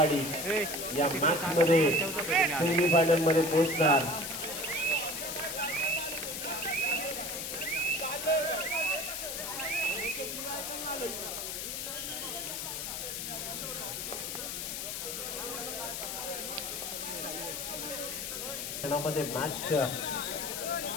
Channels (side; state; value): left; noise; hiss, 4 dB below the sound